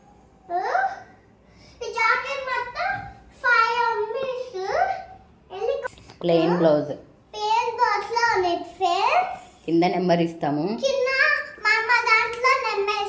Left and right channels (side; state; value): both; identical; correlation 1.00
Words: ఈ జాకెట్ మొత్తం 5 metres plain blouse. Plain blouse లో ఉంది ఫ్రెండ్స్. కింద నెంబర్ ఇస్తాము, కింద మా దాంట్లో నెంబర్